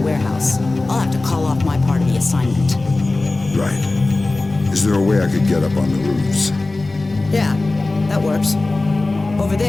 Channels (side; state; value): right; quieter; 3.1 dB